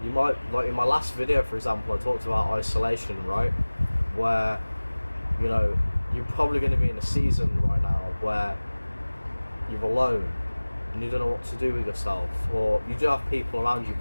you might, like in my last video, for example, I talked about isolation, right? Where, you know, you're probably going to be in a season right now where you're alone and you don't know what to do with yourself, or you do have people around you,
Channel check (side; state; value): both; inverted; correlation -1.00